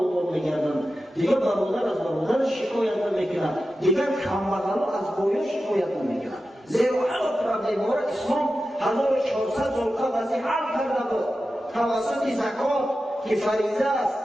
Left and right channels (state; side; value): normal; both; correlation 0.92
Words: می‌گردند. دیگر برادر از برادر شکایت نمی‌کند، دیگر کمبغلا از بایا شکایت نمی‌کند. زیرا هر پرونده ما را اسلام 1400 سال قبل از این حل کرده بود توسط زکات که فریضه است،